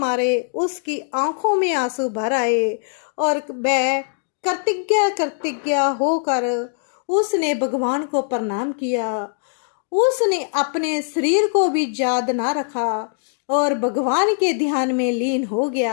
उसकी आंखों में आंसू भर आए और वह कृतज्ञ होकर उसने भगवान को प्रणाम किया। उसने अपने शरीर को भी याद ना रखा और भगवान के ध्यान में लीन हो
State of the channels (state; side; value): silent; right; digital silence